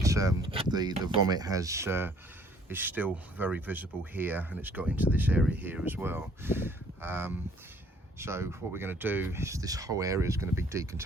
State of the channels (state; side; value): normal; both; correlation 0.59